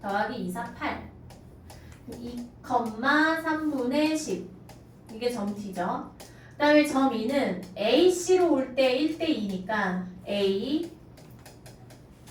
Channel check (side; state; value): both; identical; correlation 1.00